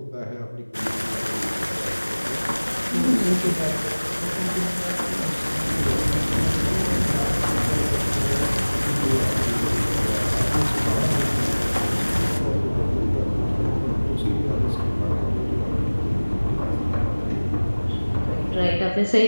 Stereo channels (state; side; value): inverted; both; correlation -1.00